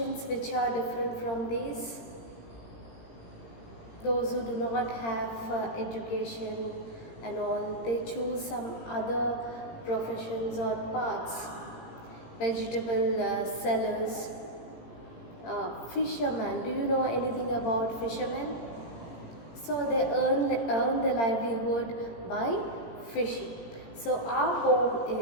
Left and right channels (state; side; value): late; right; 18 ms